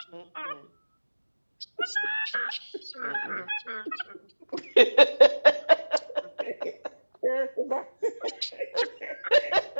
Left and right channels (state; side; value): inverted; both; correlation -1.00